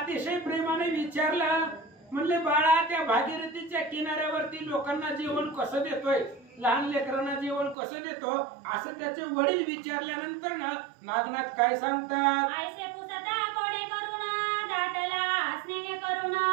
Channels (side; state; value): left; drops out; at 7.8 s